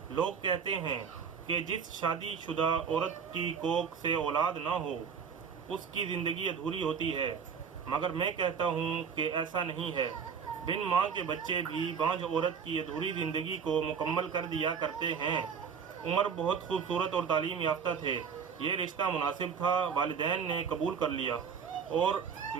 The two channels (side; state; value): left; quieter; 6.5 dB